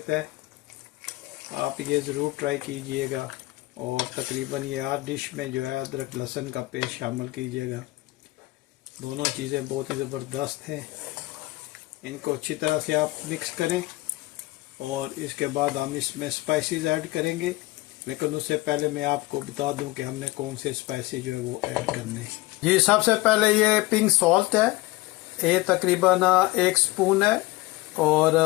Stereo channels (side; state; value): right; quieter; 20.3 dB